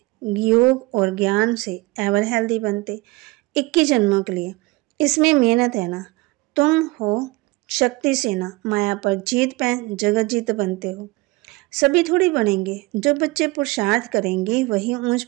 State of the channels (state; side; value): quieter; left; 22.9 dB